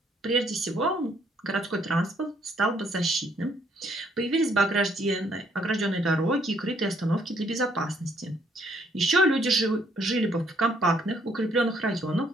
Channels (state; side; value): normal; both; correlation 0.68